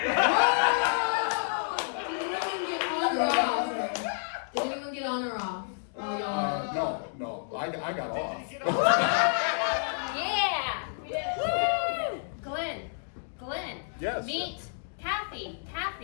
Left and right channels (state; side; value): silent; right; digital silence